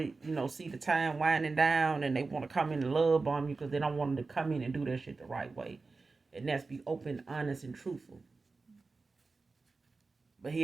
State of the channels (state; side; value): quieter; left; 4.0 dB